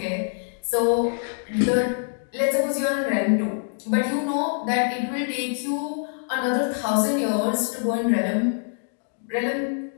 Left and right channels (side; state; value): right; silent; digital silence